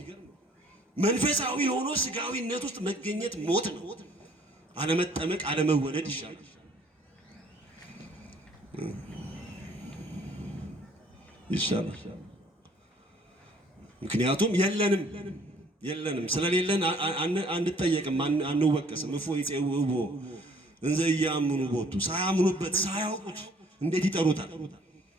መንፈሳዊ ሆኖ ሥጋዊነት ውስጥ መገኘት ሞት ነው። አለመጠመቅ አለመወለድ ይሻላል። ምክንያቱም የለንም ስለሌለን አንጠየቅም፣ አንወቀስም። እፎ ይጼውቦ እንዘ ኢያምኑ ቦቱ ሳያምኑበት ሳያውቁት እንዴት ይጠሩታል?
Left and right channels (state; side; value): normal; both; correlation 0.59